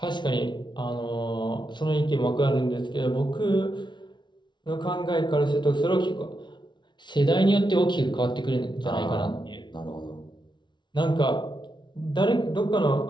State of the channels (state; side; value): late; right; 0.22 ms